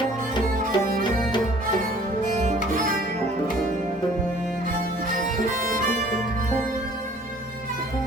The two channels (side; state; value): both; normal; correlation 0.53